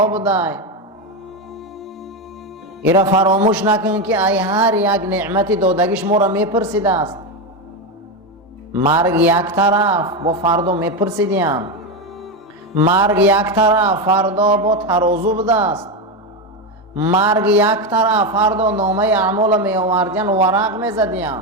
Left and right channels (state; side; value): normal; both; correlation 0.12